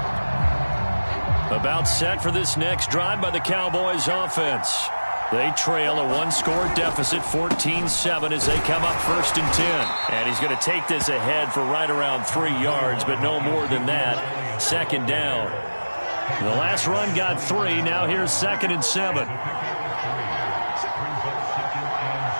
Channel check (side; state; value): both; inverted; correlation -1.00